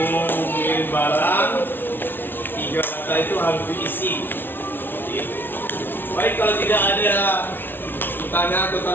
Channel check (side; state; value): right; late; 0.10 ms